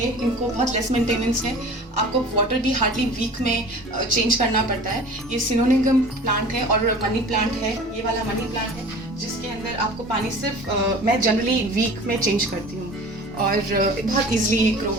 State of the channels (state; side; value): normal; both; correlation 0.41